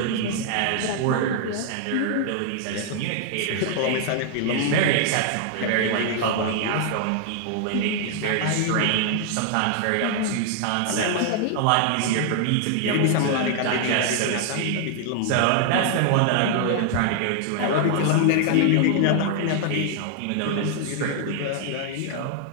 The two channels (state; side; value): different; both; correlation 0.00